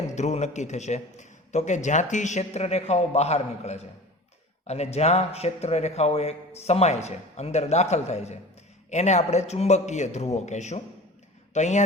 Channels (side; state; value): both; normal; correlation 0.38